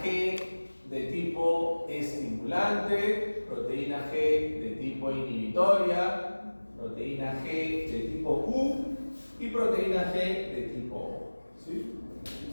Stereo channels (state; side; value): inverted; both; correlation -1.00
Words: G de tipo estimulante, proteína G de tipo inhibitoria, proteína G de tipo Q y proteína G de tipo O. ¿Sí?